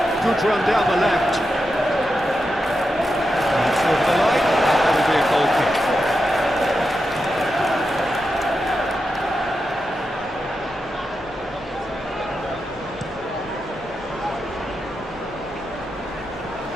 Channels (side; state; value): left; noise; rumble, 22 dB below the sound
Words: good run down the left. It's over the line. That'll be a goal kick.